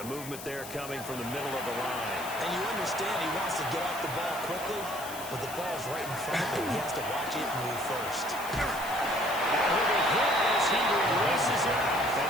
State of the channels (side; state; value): left; noise; hiss, 12 dB below the sound